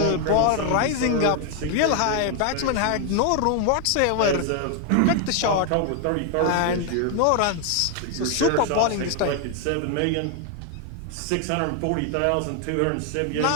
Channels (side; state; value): both; different; correlation 0.00